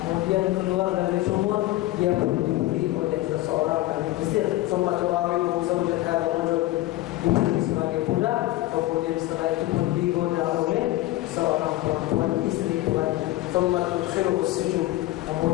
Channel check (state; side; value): quieter; right; 16.9 dB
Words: Kemudian keluar dari sumur, dia dibeli oleh seseorang dari Mesir. ثم تراوده زوجة هذا الرجل. Dibeli sebagai budak. Kemudian setelah itu pun digoda oleh seorang perempuan istri tuannya. ثم تدخله السجن.